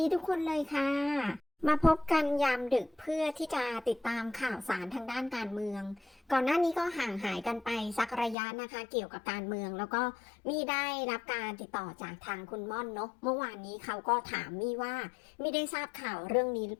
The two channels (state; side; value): drops out; right; at 8.3 s